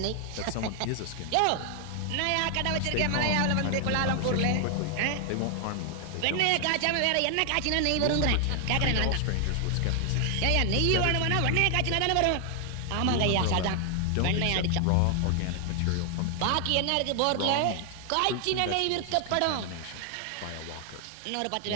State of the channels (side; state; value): both; different; correlation 0.00